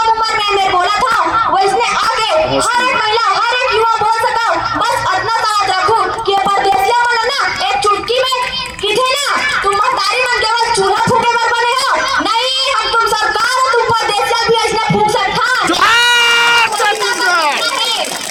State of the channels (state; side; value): identical; both; correlation 1.00